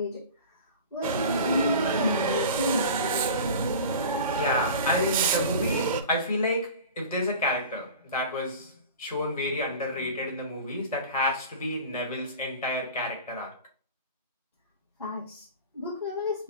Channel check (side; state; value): both; inverted; correlation -0.36